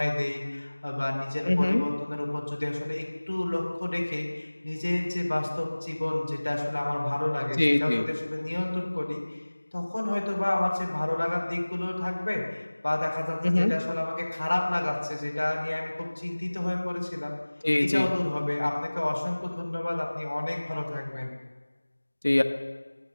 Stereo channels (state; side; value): inverted; both; correlation -1.00